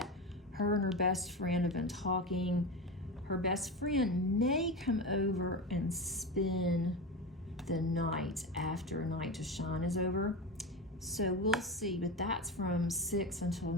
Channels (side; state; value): both; normal; correlation 0.22